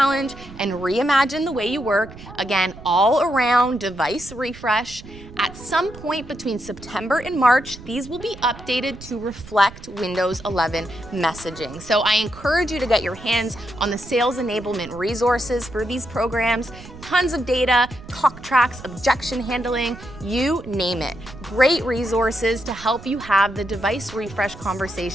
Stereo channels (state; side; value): noise; right; rumble, 16 dB below the sound